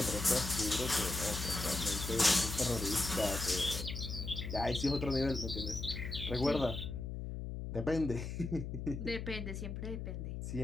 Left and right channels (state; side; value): noise; left; hum, 5 dB below the sound